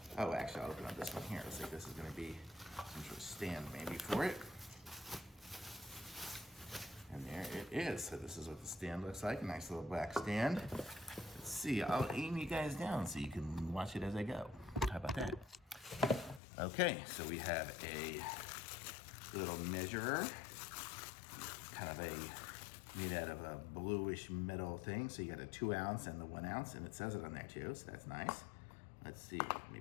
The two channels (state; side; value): drops out; right; at 16.4 s